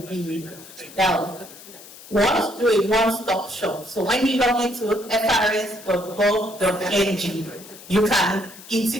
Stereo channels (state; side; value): noise; left; hiss, 18 dB below the sound